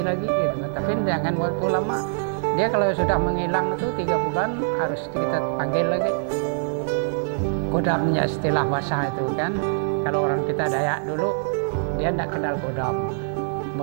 lagi gitu. Tapi jangan waktu lama. Dia kalau sudah menghilang itu 3 bulan harus kita panggil lagi. Kodamnya istilah bahasa itu kan. Kalau orang kita Dayak dulu, dia tidak kenal kodam.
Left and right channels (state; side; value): silent; left; digital silence